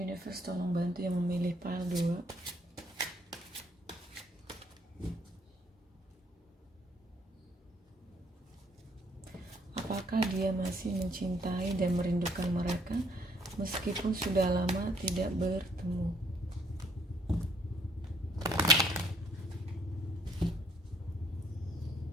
tolong bantu yang memilih pile 2. Apakah dia masih mencintai dan merindukan mereka meskipun sudah lama tidak bertemu?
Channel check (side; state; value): both; normal; correlation 0.64